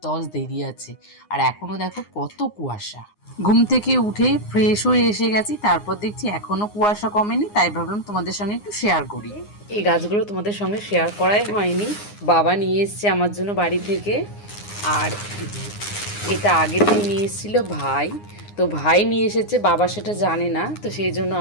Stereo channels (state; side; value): late; right; 9.7 ms